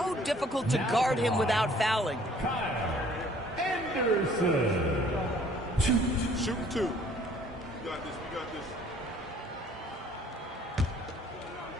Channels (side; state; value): both; normal; correlation 0.57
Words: difficult to guard him without fouling. Anderson. Shoot 2. You got this. We got this.